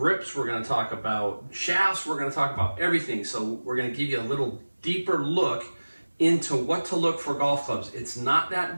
We're going to talk about shafts. We're going to talk about everything. So we're going to give you a little deeper look into what to look for golf clubs. It's not that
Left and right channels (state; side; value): inverted; both; correlation -1.00